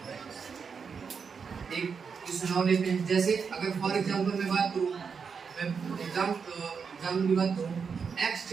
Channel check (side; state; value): left; quieter; 5.9 dB